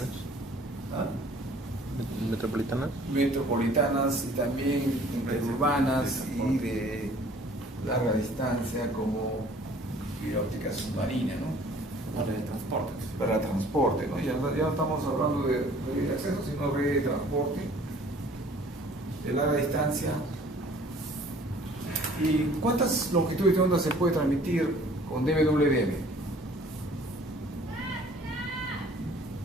¿Ah? Metropolitanas. Metropolitanas y también interurbanas y de larga distancia como fibra óptica submarina, ¿no? Para el transporte. Para transporte, ¿no? Ya no estamos hablando de red de acceso, sino red de transporte de larga distancia. ¿Y cuántas longitudes de onda se puede transmitir con DWDM?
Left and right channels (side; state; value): both; normal; correlation 0.53